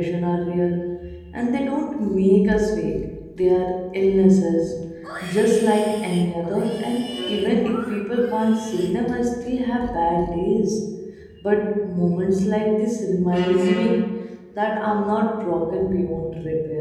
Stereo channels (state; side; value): identical; both; correlation 1.00